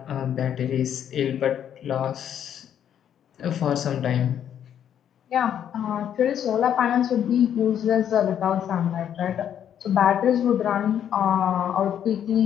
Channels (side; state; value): right; quieter; 9.5 dB